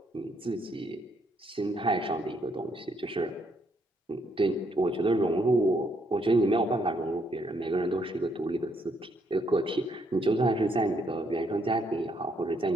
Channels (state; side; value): normal; both; correlation 0.72